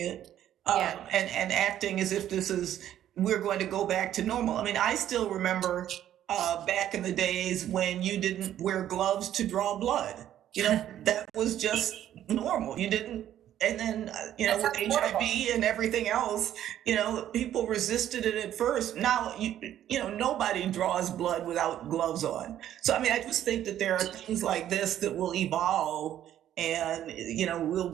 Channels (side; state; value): left; quieter; 11.5 dB